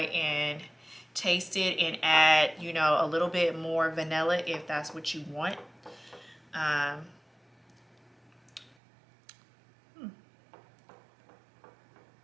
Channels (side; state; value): left; drops out; at 8.8 s